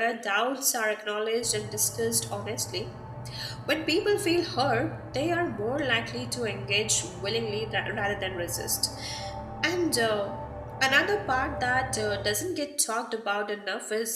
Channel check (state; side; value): identical; both; correlation 1.00